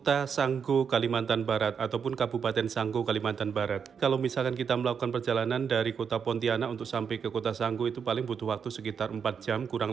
Sanggo, Kalimantan Barat, ataupun Kabupaten Sanggo, Kalimantan Barat. Kalau misalkan kita melakukan perjalanan dari kota Pontianak untuk sampai ke Kota Sanggo itu paling butuh waktu sekitar 4 jam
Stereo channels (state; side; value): quieter; left; 6.8 dB